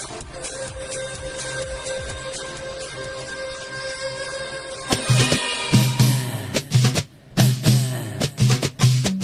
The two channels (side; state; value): both; identical; correlation 1.00